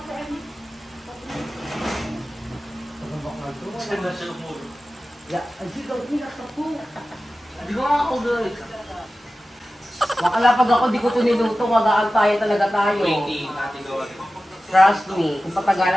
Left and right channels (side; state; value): both; normal; correlation 0.95